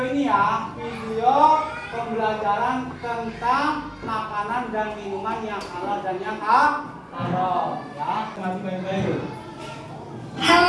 ini ya, video pembelajaran tentang makanan dan minuman yang halal dan yang haram. Ya, baik-baik.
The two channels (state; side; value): identical; both; correlation 1.00